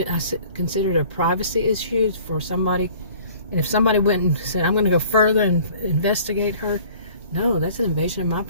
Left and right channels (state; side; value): inverted; both; correlation -0.50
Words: consider it a privacy issue for somebody. And if somebody went and said, I'm going to go further and investigate her, no, that's an invasion of my